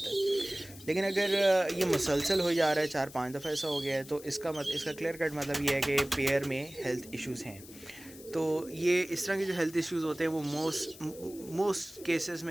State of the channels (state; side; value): noise; left; hiss, 18 dB below the sound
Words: है। लेकिन अगर ये मुसलसल हो जा रहा है, 4-5 दफ़ा ऐसा हो गया है, तो इसका क्लियर कट मतलब ये है कि पेयर में हेल्थ इश्यूज़ हैं। तो ये इस तरह के जो हेल्थ इश्यूज़ होते हैं वो मोस्ट केसेस